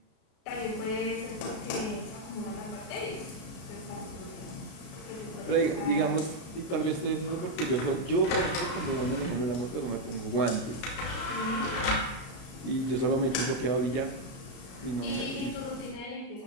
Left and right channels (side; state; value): right; late; 33 ms